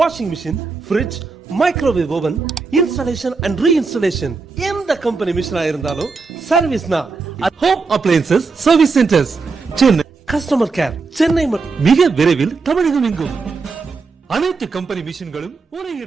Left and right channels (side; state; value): left; quieter; 4.4 dB